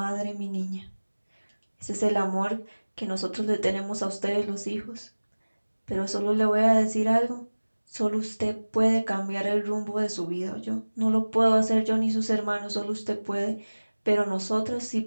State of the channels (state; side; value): inverted; both; correlation -1.00